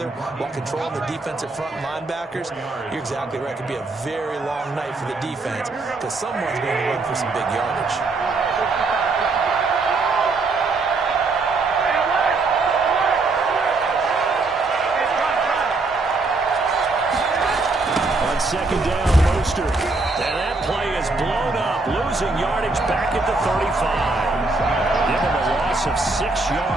while controlling the defensive front linebackers, you're exactly right. It could be a very long night for the defense because someone's going to run for some big yardage. On second down, Mostert. And that play is blown up, losing yardage back at the 35. Give him a loss of 6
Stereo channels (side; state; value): left; quieter; 3.6 dB